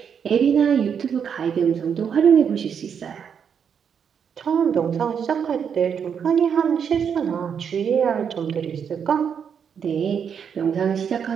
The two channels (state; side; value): quieter; left; 7.4 dB